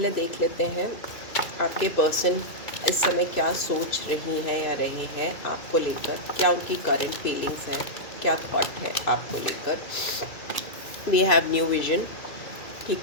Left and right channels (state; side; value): late; right; 2.5 ms